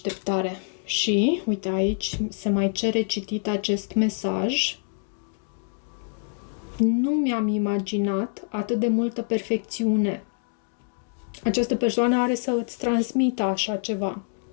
Și, uite, aici se mai cere citit acest mesaj. Nu mi-am imaginat atât de multă perfecțiune. Această persoană are să îți transmită așa ceva.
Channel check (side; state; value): right; silent; 61 dB below the other